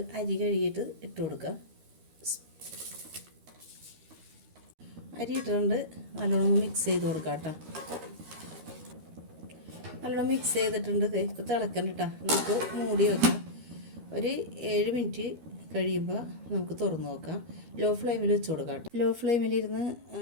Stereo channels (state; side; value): late; left; 13 ms